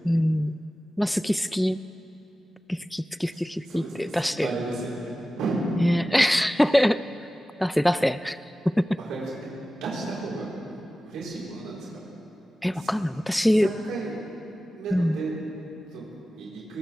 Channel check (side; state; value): both; normal; correlation 0.95